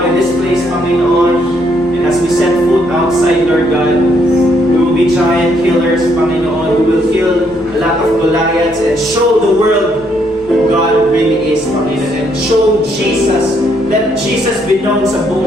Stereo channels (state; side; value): noise; right; rumble, 24 dB below the sound